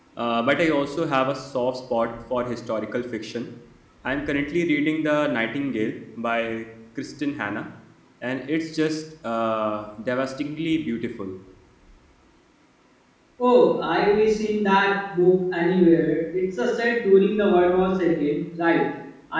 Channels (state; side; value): identical; both; correlation 1.00